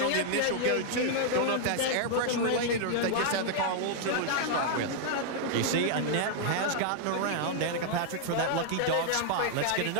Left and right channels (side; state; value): both; different; correlation -0.01